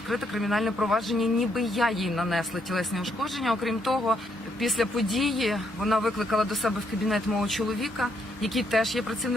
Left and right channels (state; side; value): normal; both; correlation 0.75